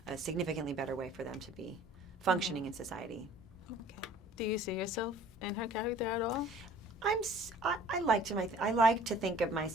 a significantly better way for them to be functioning in society. Okay. Do you see yourself in her character at all? I like to think of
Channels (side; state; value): both; normal; correlation 0.50